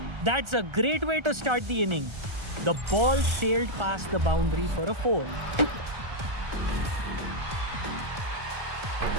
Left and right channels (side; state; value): left; late; 1.3 ms